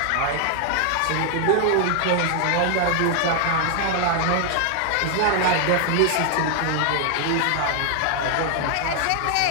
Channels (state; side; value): different; both; correlation 0.00